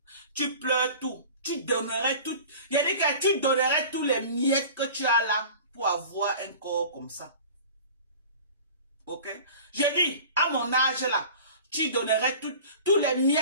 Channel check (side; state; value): both; inverted; correlation -0.40